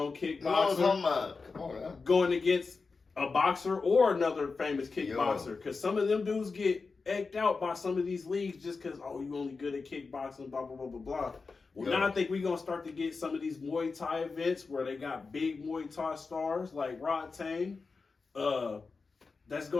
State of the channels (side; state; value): right; quieter; 4.4 dB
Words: kickboxer, going against a boxer or another famous kickboxer. Because some of them dudes get egged out by some of these leagues just because, oh, you only good at kickboxing, blah, blah, blah, blah, blah. Well, now I think we're going to start to get some of these Muay Thai events where they got big Muay Thai stars like Rod Tang. That's